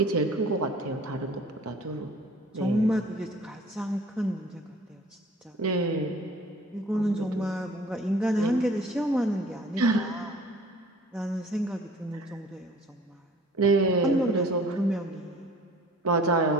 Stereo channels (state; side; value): normal; both; correlation 0.49